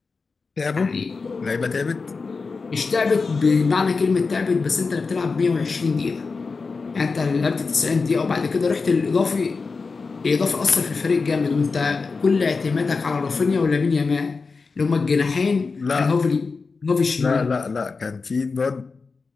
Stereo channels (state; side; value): quieter; right; 4.5 dB